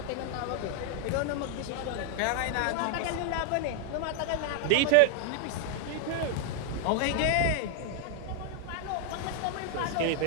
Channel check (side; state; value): both; different; correlation 0.00